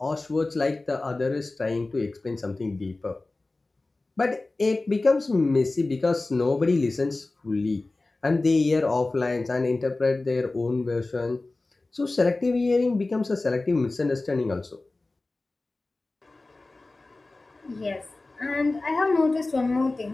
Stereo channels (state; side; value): quieter; right; 3.2 dB